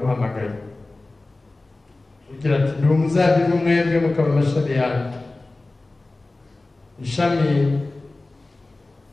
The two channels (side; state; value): right; quieter; 3.1 dB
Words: Ugira ati ndi umuzabibu mwebwe mukaba amashami yanjye, ishami